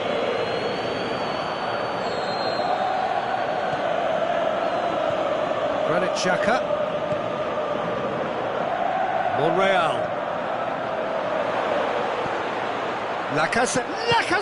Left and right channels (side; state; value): both; identical; correlation 1.00